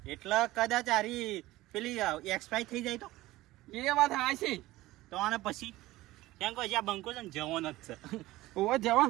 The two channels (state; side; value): quieter; left; 17.6 dB